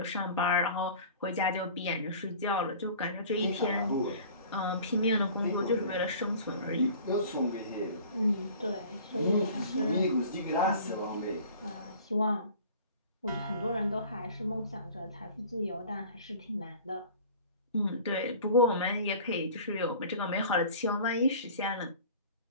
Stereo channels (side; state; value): both; inverted; correlation -0.44